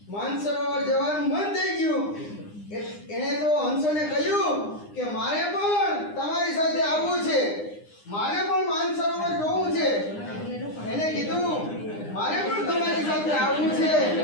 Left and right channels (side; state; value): right; late; 9.8 ms